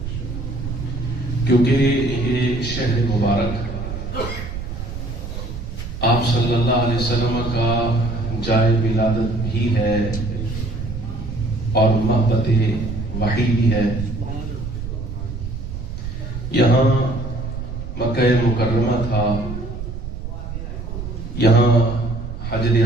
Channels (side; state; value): right; noise; rumble, 7 dB below the sound